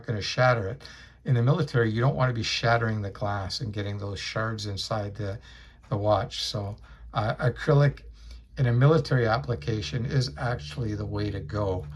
going to shatter it. In the military, you don't want to be shattering the glass and getting those shards inside the watch. So acrylic in a military application is actually the way to go.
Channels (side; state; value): both; identical; correlation 1.00